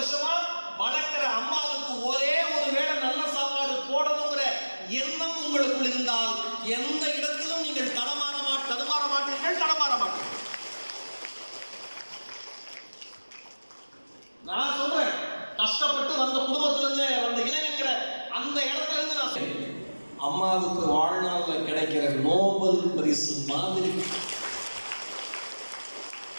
வளர்க்கிற அம்மாவுக்கு ஒரே ஒரு வேளை நல்ல சாப்பாடு போடணுங்கிற எண்ணம் உங்களுக்குள் இருந்தால் எந்த இடத்திலும் நீங்கள் தடுமாற மாட்டீர்கள். நான் சொல்றேன், கஷ்டப்பட்டு வந்த குடும்பத்திலிருந்து வந்த இளைஞங்கிற அந்த இடத்துல இருந்து நான் சொல்றேன், அம்மாவுக்கு வாழ்நாள்ல கிடைக்கிற நோபல் பரிசு மாதிரி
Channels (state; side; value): inverted; both; correlation -1.00